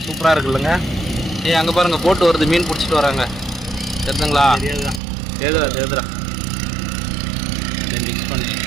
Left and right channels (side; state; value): left; drops out; at 5.0 s